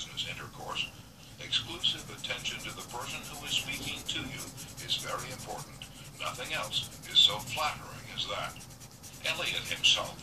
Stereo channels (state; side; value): identical; both; correlation 1.00